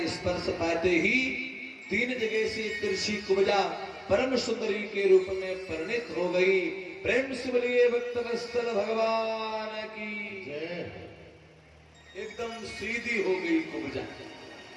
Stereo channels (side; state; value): both; identical; correlation 1.00